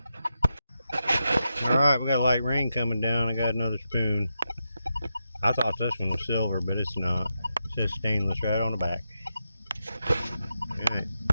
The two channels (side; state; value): both; inverted; correlation -0.86